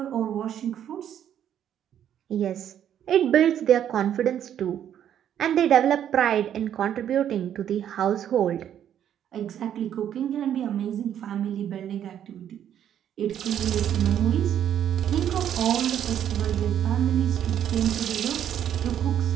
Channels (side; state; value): left; quieter; 10.0 dB